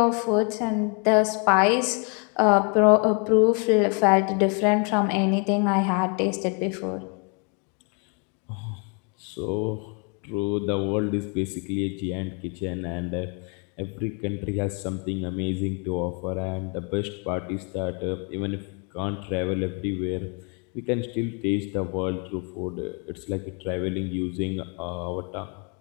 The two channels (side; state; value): right; quieter; 36.8 dB